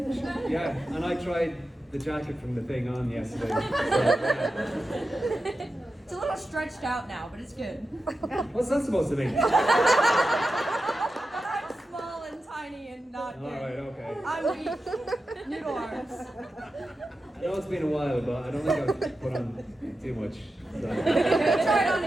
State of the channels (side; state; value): both; normal; correlation 0.91